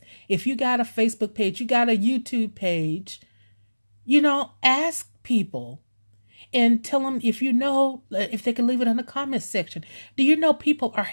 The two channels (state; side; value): inverted; both; correlation -1.00